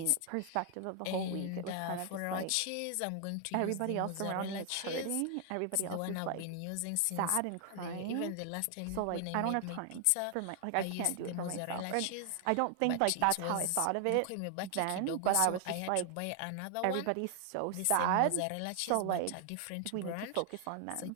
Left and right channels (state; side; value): different; both; correlation 0.00